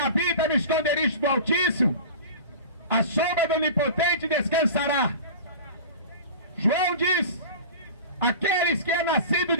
no esconderijo do Altíssimo, a sombra do Onipotente descansará. João diz: aqueles que é nascido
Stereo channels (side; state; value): both; inverted; correlation -0.35